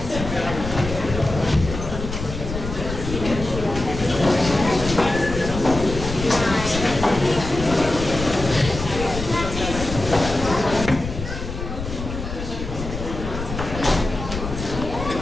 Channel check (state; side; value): noise; left; rumble, 7 dB below the sound